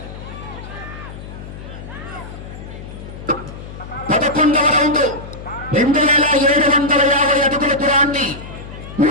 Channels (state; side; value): noise; left; hum, 12 dB below the sound